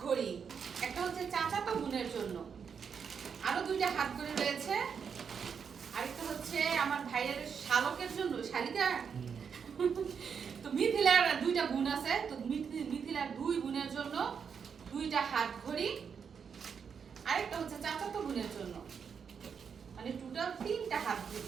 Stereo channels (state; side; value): quieter; left; 6.6 dB